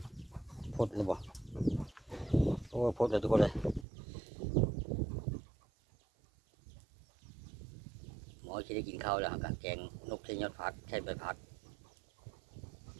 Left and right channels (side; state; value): left; drops out; at 3.9 s